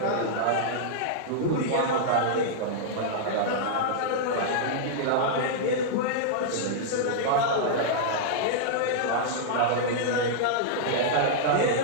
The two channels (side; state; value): both; different; correlation -0.02